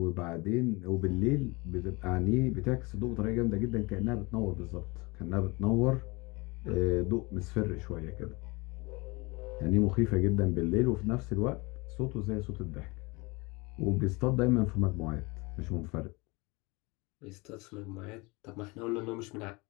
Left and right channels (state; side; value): quieter; right; 25.7 dB